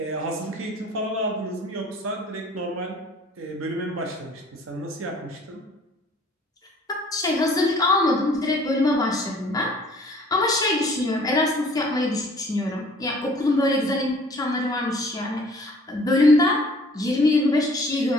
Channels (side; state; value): both; normal; correlation 0.53